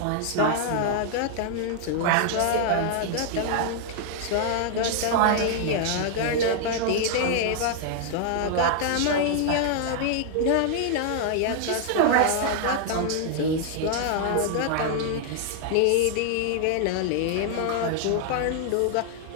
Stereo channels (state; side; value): different; both; correlation 0.00